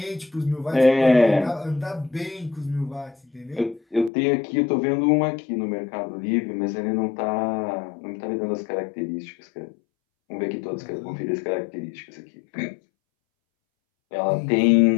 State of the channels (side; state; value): right; drops out; at 4.1 s